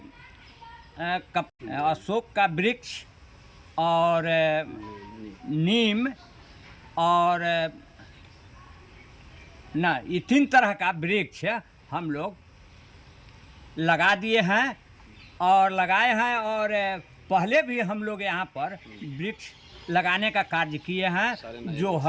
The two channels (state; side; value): identical; both; correlation 1.00